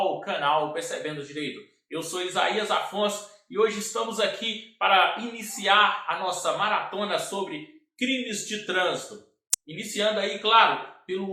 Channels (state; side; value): identical; both; correlation 1.00